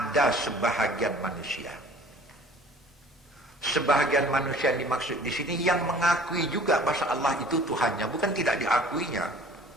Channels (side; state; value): both; normal; correlation 0.49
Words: sebahagian manusia. Sebahagian manusia yang dimaksud di sini yang mengakui juga bahwa Allah itu Tuhannya, bukan tidak diakuinya.